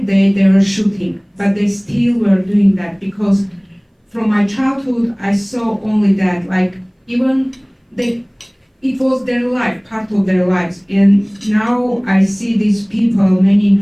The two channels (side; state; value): both; identical; correlation 1.00